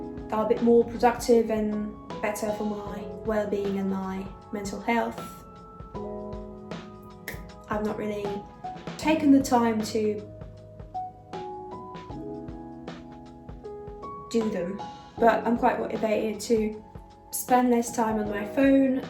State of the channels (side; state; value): both; identical; correlation 1.00